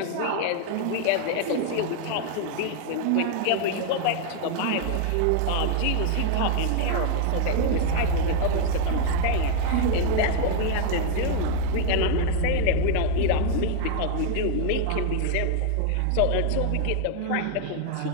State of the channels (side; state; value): both; different; correlation 0.00